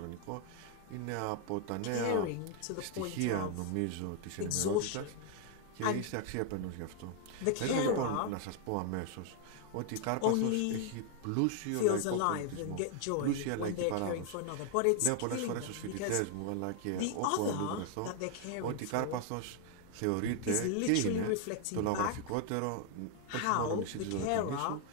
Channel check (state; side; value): different; both; correlation 0.00